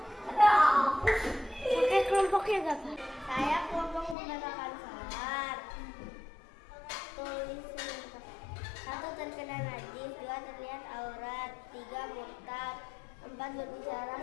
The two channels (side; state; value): right; drops out; at 4.2 s